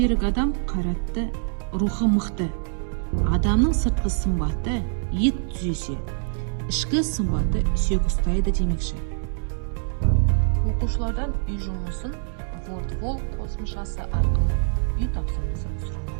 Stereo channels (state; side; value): silent; left; 62 dB below the other